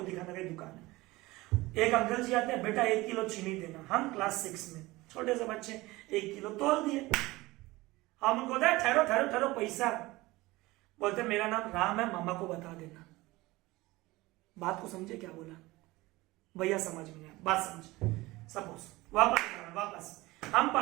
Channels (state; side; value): quieter; left; 20.3 dB